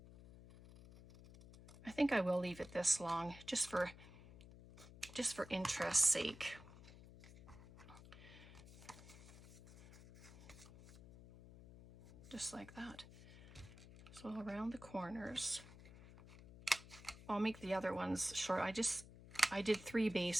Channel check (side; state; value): left; noise; hum, 17 dB below the sound